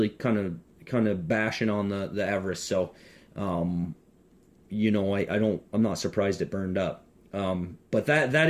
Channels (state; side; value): identical; both; correlation 1.00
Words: kind of bashing on the Everest, so you know, I'm not surprised it burned up. But that